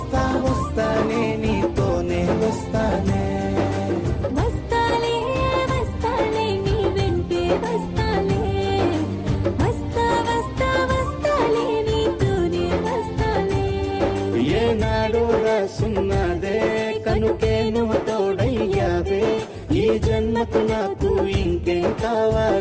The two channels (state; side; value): identical; both; correlation 1.00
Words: వస్తానే నీతోనే వస్తానే. వస్తాలే వస్తాలే నీ వెంటే వస్తాలే, వస్తా వస్తా వస్తాలే నీతోనే వస్తాలే. ఏనాడు రాసున్నదే కనుకే నువ్వు తోడయ్యావే, ఈ జన్మకు నాకు ఇంకేం